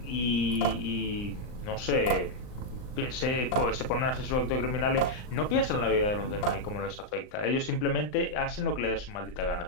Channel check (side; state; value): right; late; 39 ms